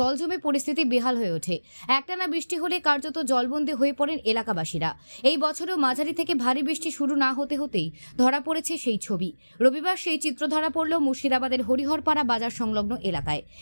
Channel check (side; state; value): both; inverted; correlation -1.00